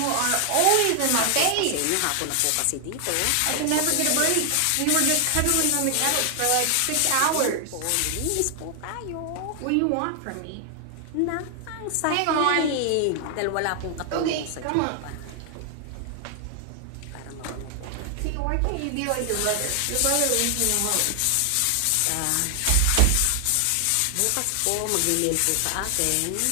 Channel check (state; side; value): different; both; correlation 0.00